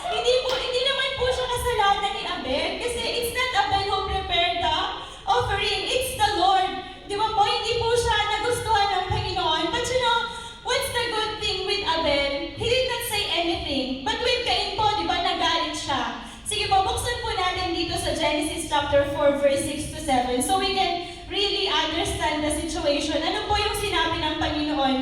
Hindi naman po siya kasalanan ni Abel kasi it's not Abel who prepared the offering, it's the Lord. Di ba po, hindi po siya nagustuhan ng Panginoon. But you know, what's the good thing with Abel? He did not say anything. But with Cain po, di ba, nagalit siya. Sige po, buksan po natin dito sa Genesis chapter 4, verse 6 to 7. So we can really understand the situation. Ano po yung sinabi ng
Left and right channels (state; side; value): identical; both; correlation 1.00